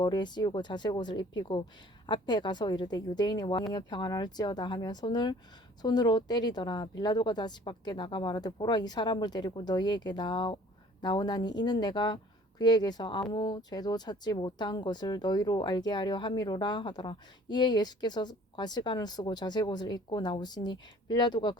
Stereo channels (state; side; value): normal; both; correlation 0.52